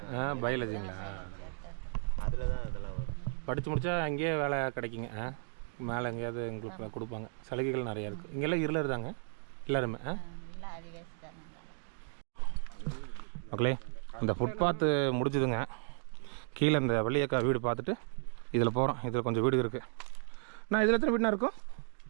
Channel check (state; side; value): silent; left; 55 dB below the other